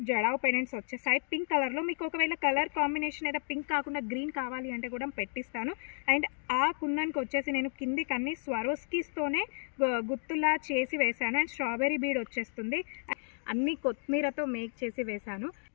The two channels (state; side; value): silent; right; 56 dB below the other